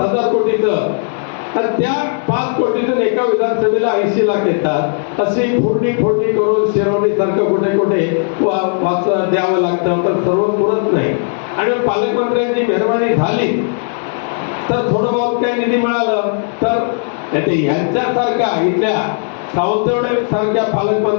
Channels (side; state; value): right; silent; 67 dB below the other